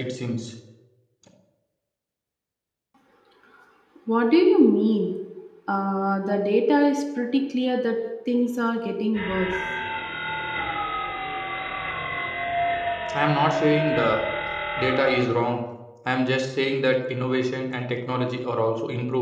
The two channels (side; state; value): both; identical; correlation 1.00